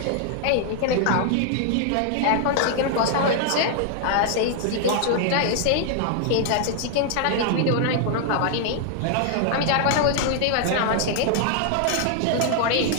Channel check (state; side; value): different; both; correlation 0.00